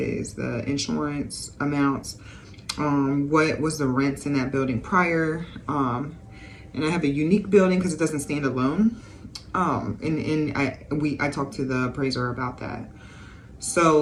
the insurance amounts, what was the rents in that building prior, and I have a unique building because it doesn't stand alone. I talked to the appraiser about that.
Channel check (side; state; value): both; identical; correlation 1.00